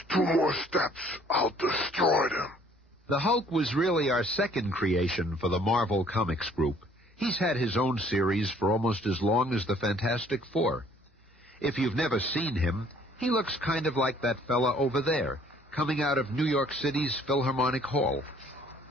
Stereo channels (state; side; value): normal; both; correlation 0.59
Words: 2 more steps, I'll destroy them. The Hulk was really our second creation for the Marvel Comics group. He's had his own series for almost as long as the Fantastic Four. If you've never seen him, he looks kind of like that fella over there, coming out of New York City's Philharmonic Hall.